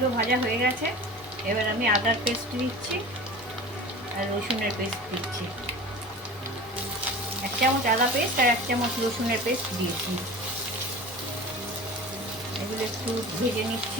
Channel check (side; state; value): both; normal; correlation 0.36